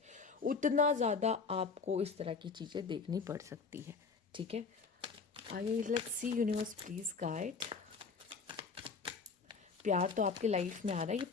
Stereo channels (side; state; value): right; quieter; 4.9 dB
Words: उतना ज़्यादा आपको इस तरह की चीज़ें देखनी पड़ सकती है, ठीक है। आइए let's see, universe please guide. प्यार तो आपके लाइफ में आ रहा है, ये